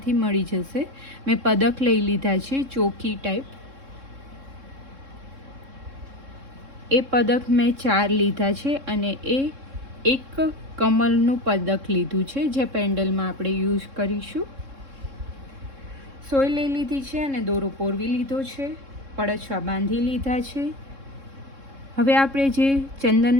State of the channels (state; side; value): late; left; 3.7 ms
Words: મળી જશે. મેં પદક લઈ લીધા છે, ચોકી ટાઈપ. એ પદક મેં 4 લીધા છે અને એ એક કમલનું પદક લીધું છે, જે પેન્ડલમાં આપણે યુઝ કરીશું. સોય લઈ લીધી છે અને દોરો પોરવી લીધો છે. પડછવા બાંધી લીધા છે. હવે આપણે જે